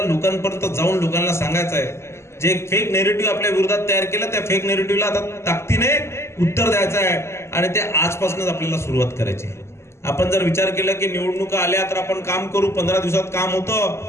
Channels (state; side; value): late; right; 0.13 ms